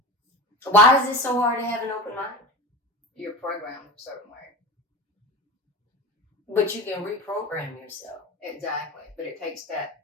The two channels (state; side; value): normal; both; correlation 0.29